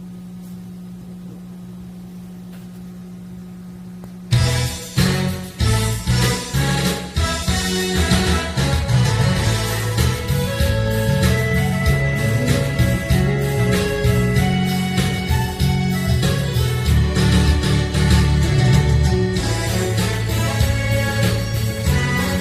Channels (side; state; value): both; identical; correlation 1.00